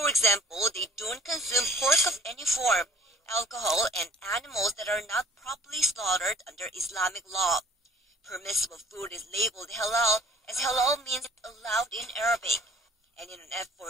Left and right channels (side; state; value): both; normal; correlation 0.53